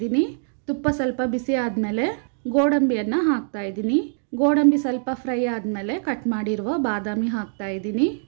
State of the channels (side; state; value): left; silent; digital silence